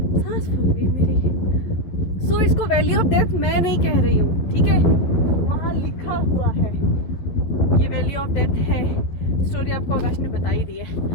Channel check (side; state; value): right; late; 11 ms